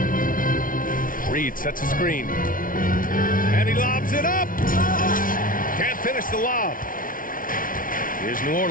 Reid sets a screen. And he lobs it up. Can't finish the lob. Here's New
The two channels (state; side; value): late; right; 0.39 ms